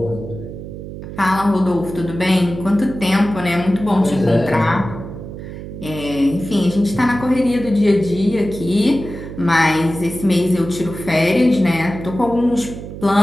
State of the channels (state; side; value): noise; right; hum, 11 dB below the sound